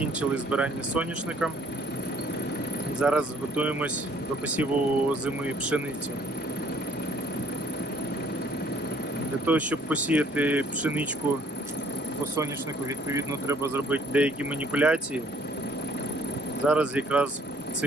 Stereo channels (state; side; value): normal; both; correlation 0.61